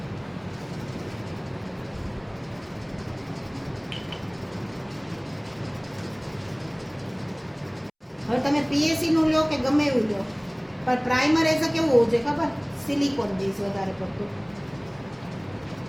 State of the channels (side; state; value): both; identical; correlation 1.00